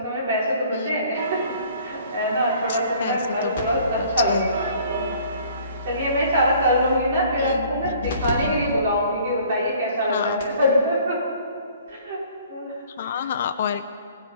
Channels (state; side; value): inverted; both; correlation -0.55